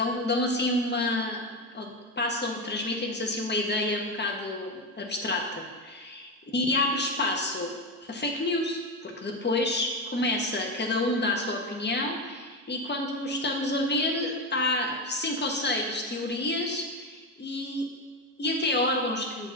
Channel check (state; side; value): normal; both; correlation 0.14